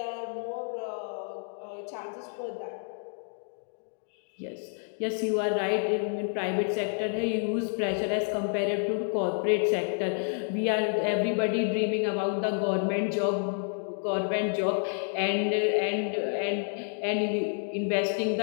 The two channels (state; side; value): silent; right; 58 dB below the other